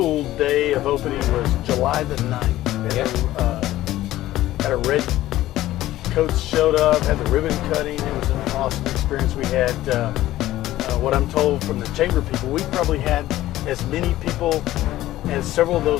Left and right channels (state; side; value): quieter; right; 15.1 dB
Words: day of opening was July the 9th. Had a red coats showed up, had the ribbon cutting. It was an awesome experience. We had, what I'm told from the chamber people, we probably had as many people as several of